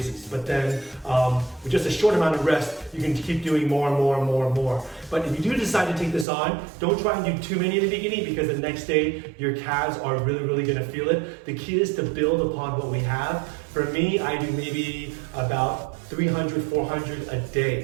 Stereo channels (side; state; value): left; drops out; at 6.2 s